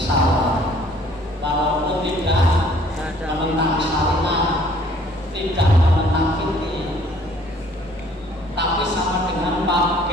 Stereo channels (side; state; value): both; normal; correlation 0.58